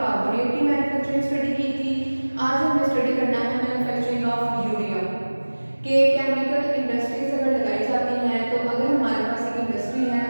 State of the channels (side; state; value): both; inverted; correlation -1.00